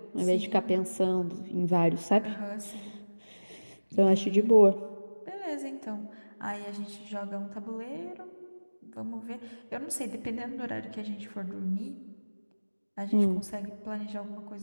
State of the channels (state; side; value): inverted; both; correlation -1.00